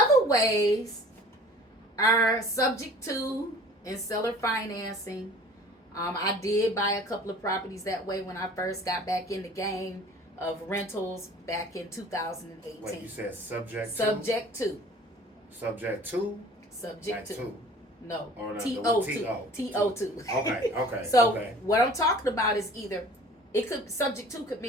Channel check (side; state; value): both; normal; correlation 0.47